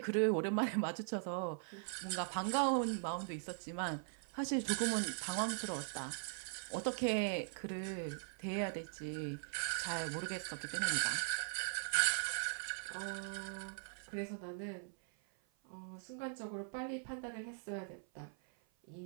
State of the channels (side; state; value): left; silent; 51 dB below the other